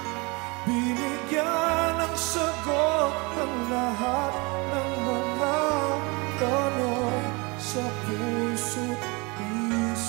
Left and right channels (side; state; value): left; quieter; 27.7 dB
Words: binigyan ng sagot ng lahat ng mga tanong sa puso't